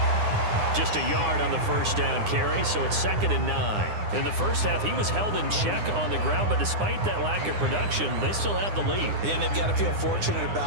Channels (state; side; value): late; left; 9.8 ms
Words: Just a yard on the first down carry, so it's 2nd and 9. In the first half, he was held in check on the ground, but despite that lack of production, they still have the lead. And they've got to feel fortunate